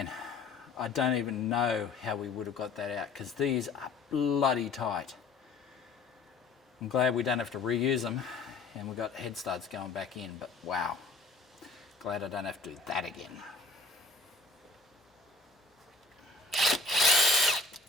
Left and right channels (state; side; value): quieter; right; 3.9 dB